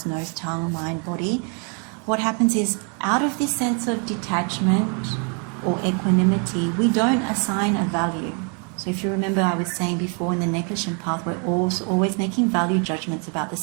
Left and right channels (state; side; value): quieter; left; 38.2 dB